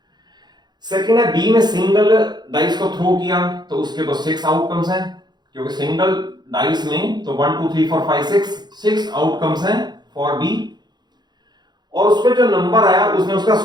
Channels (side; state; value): left; late; 0.21 ms